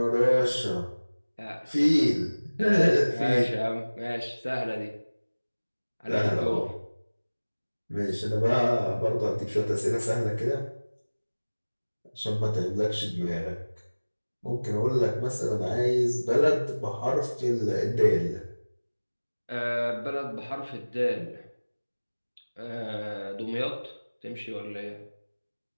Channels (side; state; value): both; inverted; correlation -1.00